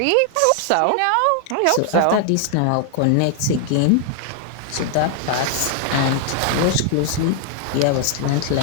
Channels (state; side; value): different; both; correlation 0.00